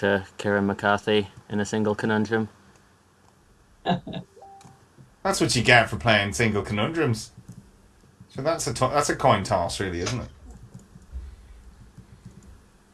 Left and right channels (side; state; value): both; identical; correlation 1.00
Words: Kieran McCarthy in a single conundrum. That's what you get for playing single conundrums. So that's a coin toss, really, isn't it?